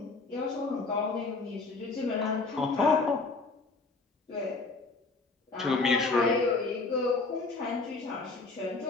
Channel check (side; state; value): right; quieter; 3.8 dB